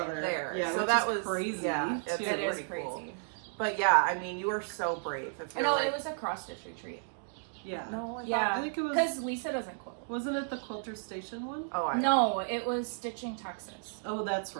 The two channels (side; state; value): left; silent; digital silence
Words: other. there. Yeah, So which that is was crazy. Yeah, it's too. It is pretty crazy. cool. But yeah, I mean, you were so brave. If I you're know like, it was a cross stitch retreat. Yeah. No, I Yeah, I think it was. because Lisa doesn't quilt. Wasn't it the Quilter Station one? Oh, I No, it was Stitching Texas, Oh, that's